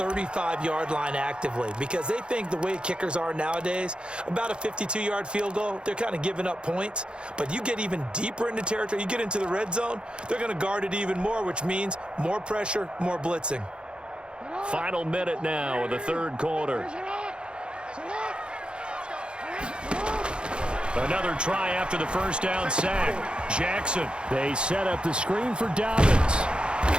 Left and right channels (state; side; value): late; left; 0.054 ms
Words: line actively because they think the way kickers are nowadays, about a 52-yard field goal, they're kind of giving up points. But you get even deeper into territory, you get into the red zone, they're going to guard it even more, which means more pressure, more blitzing. Final minute now of the third quarter. Another try after the first down sack. Jackson, they set up the screen for Dobbins.